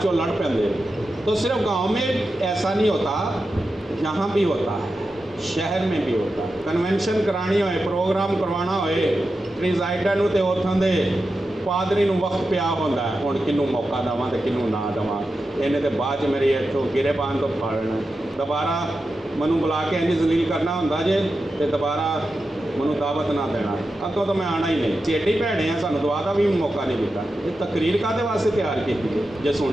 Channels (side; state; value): both; normal; correlation 0.90